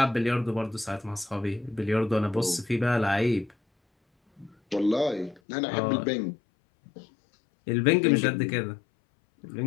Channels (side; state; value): right; drops out; at 5.4 s